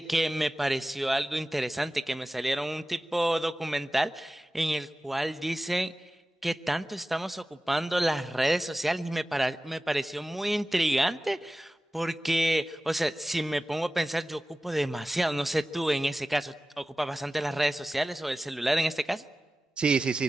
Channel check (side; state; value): both; normal; correlation 0.96